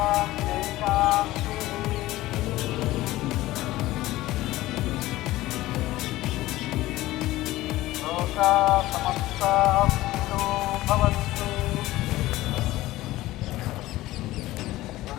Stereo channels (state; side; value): quieter; right; 17.0 dB